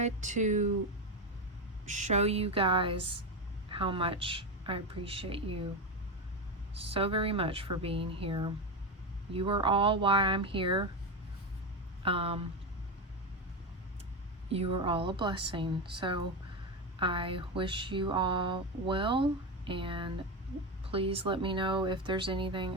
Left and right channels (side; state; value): both; normal; correlation 0.14